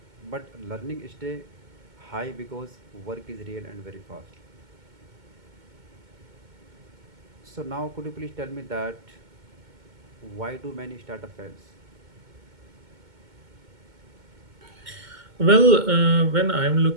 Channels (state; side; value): late; left; 2.2 ms